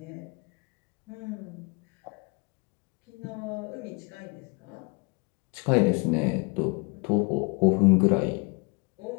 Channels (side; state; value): right; quieter; 31.7 dB